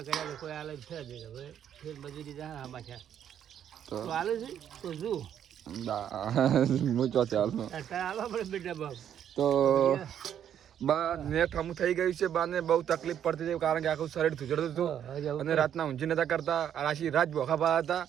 કર્યા તો કોઈ હાલત છે જ હવે ફેર મજૂરી જા આમાં છે તો હાલે છે તો શું હું ચોથી હાલનો હાલવા પડે બેટા બાપ. તો બા નેટ હમું થઈ ગયું છે. બાને બહુ તકલીફ પડતી હતી, કારણ કે આખું શરીર ધૂજડતું હતું અને રાતના ઊંઘી નતા કરતા. રાશી રાત બોખા પા હતા.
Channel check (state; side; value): quieter; left; 9.6 dB